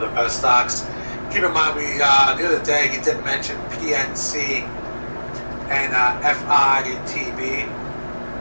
the best stocks. Keep in mind, the other day he did mention PNC and FITB.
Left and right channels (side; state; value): both; inverted; correlation -1.00